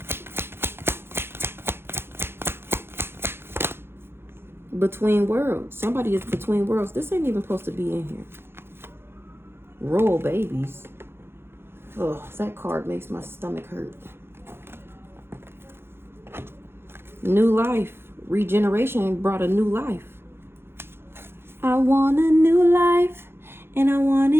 Between worlds. Somebody is between worlds. This ain't even supposed to be in here. Royal babies. Oh, that card makes my stomach hurt. New life. Regeneration brought a new life. I want a new life, and I want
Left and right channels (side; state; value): left; late; 0.11 ms